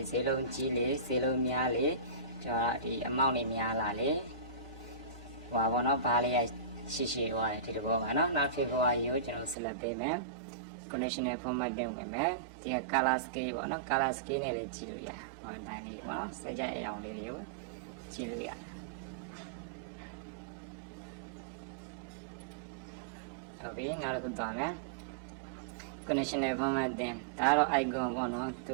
းဈေးနှုန်းကြီးလေးဈေးနှုန်းများလေးကျွန်တော်ဒီ amount တွေများလာလေဟောပေါ့နော်ဘားလေးရဲ့ရှိသွားတယ်ဒီလိုပေါ့ပါနော်နောက် February ကိုကျွန်တော် select ပေးမယ် conditional formatting ဝင်မယ်ဒီ color scale ပေါ့နော် color scale နဲ့လည်းကြည့်လို့ရဟောတိုင်းလေးပေါ့နော်စကြအရောင်လေးတွေကိုကြည့်လို့ရဟုတ်ပြီနောက်တစ်ခုသွားမယ် conditional formatting ဒါတော့ icon ပေါ့နော်သူ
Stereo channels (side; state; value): left; drops out; at 9.6 s